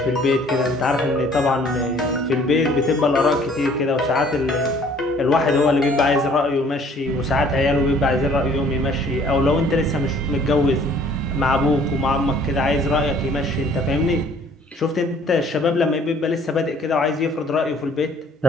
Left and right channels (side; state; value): both; normal; correlation 0.56